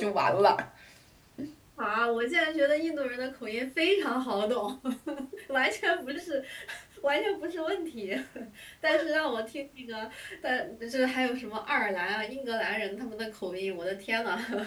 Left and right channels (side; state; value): both; identical; correlation 1.00